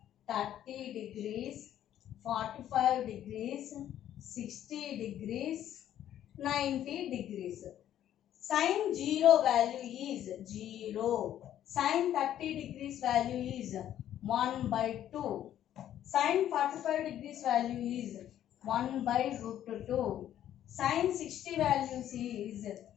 30 degrees, 45 degrees, 60 degrees, 90 degrees. Sin 0 value is 0. Sin 30 degrees value is 1 by 2. Sin 45 degrees value is 1 by root 2. Sin 60 values is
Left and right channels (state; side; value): quieter; right; 11.3 dB